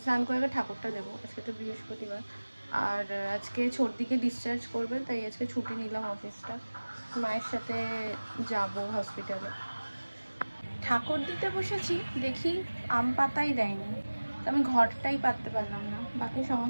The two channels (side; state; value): both; inverted; correlation -1.00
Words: স্নান করে ঠাকুরটা দেবো। আজকে তো বৃহস্পতিবার, আর আজকে ছোটদিকে ডিসচার্জ করবে, তাই আজকে ছুটি নিলাম অফিসটা, মায়ের সাথে যাব হসপিটালে। ঠাকুর দিতে বসেছি, দেখি আম পাতাই দেয়নি, তো আমি ঘরটাই পাততে পারলাম না। বাকি